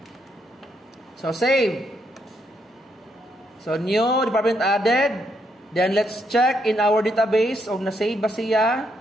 So save. So new department added. Then let's check in our database of na-save ba siya.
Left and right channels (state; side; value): normal; both; correlation 0.76